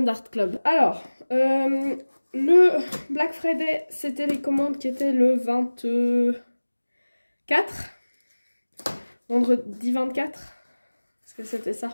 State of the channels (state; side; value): inverted; both; correlation -1.00